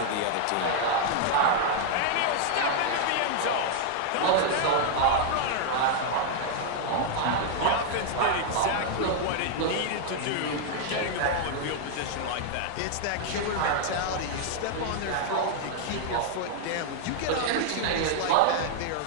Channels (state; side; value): different; both; correlation 0.00